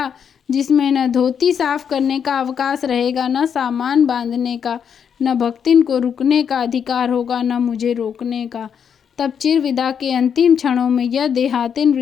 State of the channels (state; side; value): quieter; right; 7.6 dB